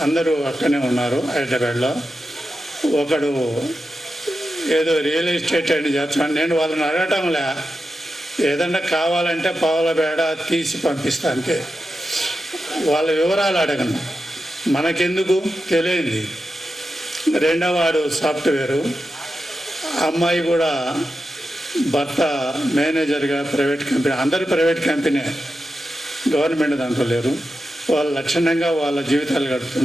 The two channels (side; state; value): both; normal; correlation 0.90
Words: అందరూ అక్కడనే ఉన్నారు హైదరాబాద్లో. ఒకడు ఏదో రియల్ ఎస్టేట్ అని చేస్తాను. నేను వాళ్ళని అడగటంలే, ఏదన్నా కావాలంటే పావుల బేడ తీసి పంపిస్తా అంతే. వాళ్ళ వివరాలు అడగను, మనకెందుకు తెలియంది. రెండోవాడు సాఫ్ట్వేరు, అమ్మాయి కూడా భర్త మేనేజర్గా ప్రైవేట్ కంపెనీ, అందరూ ప్రైవేట్ కంపెనీ. గవర్నమెంట్ దాంట్లో లేరు. వాళ్ళు లక్షణంగా వాళ్ళ జీవితాలు